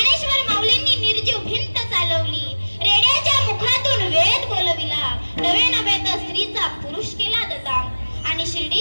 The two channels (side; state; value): both; inverted; correlation -1.00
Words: माऊलींनी निर्जीव भिंत चालवली, रेड्याच्या मुखातून वेद बोलविला, नवे नवे तर स्त्रीचा पुरुष केला दादा. आणि